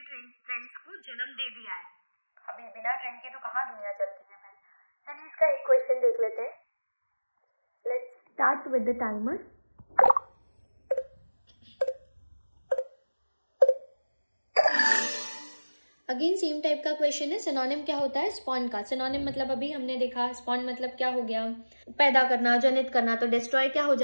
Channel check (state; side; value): inverted; both; correlation -1.00